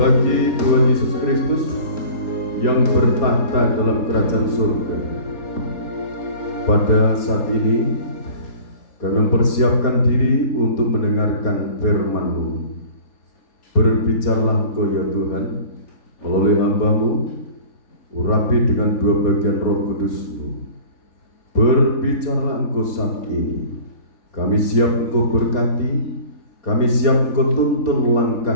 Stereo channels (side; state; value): right; late; 4.2 ms